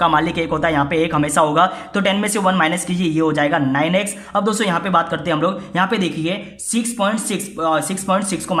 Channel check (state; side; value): identical; both; correlation 1.00